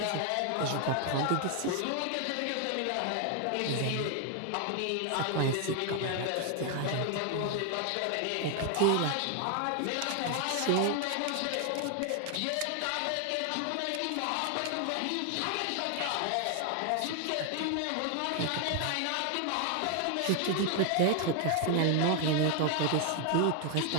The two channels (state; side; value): different; both; correlation 0.00